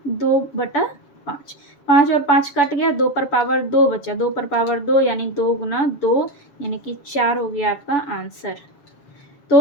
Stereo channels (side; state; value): right; late; 7.0 ms